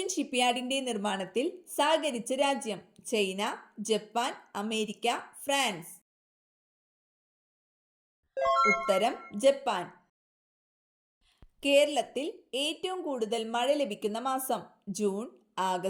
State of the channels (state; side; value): identical; both; correlation 1.00